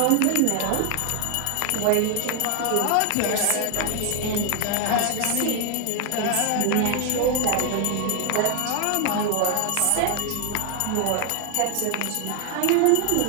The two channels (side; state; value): both; different; correlation 0.00